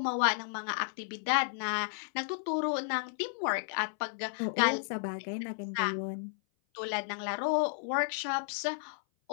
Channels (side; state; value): right; silent; 56 dB below the other